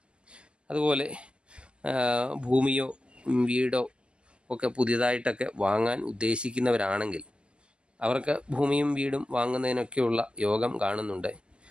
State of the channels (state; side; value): late; left; 0.057 ms